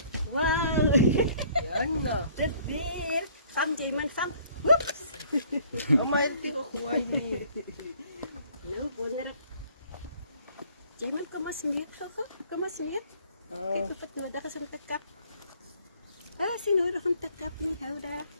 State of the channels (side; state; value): both; inverted; correlation -0.57